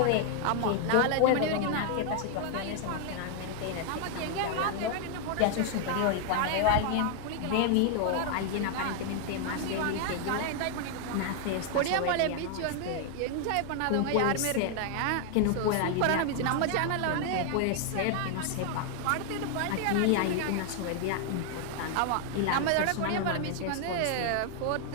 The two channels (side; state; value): both; different; correlation 0.00